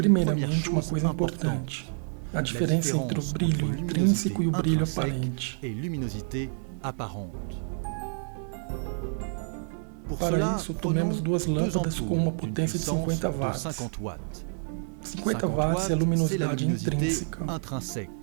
uma coisa importante: a diferença entre o brilho intrínseco e o brilho aparente. Para isso, tomemos 2 lâmpadas com uma potência de 50 watts. 50 watts é a luminosidade intrínseca.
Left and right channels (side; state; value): left; silent; 59 dB below the other